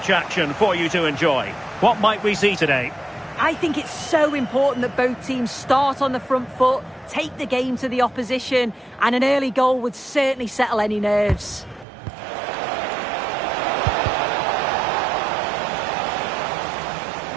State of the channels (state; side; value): drops out; left; at 11.9 s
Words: action for you to enjoy. What might we see today? I think it's so important that both teams start on the front foot, take the game to the opposition, and an early goal would certainly settle any nerves.